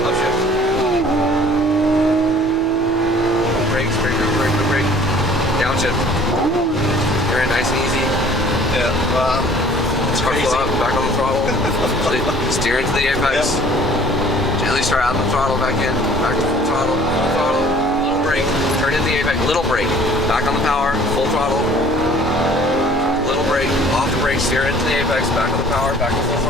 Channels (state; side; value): normal; both; correlation 0.52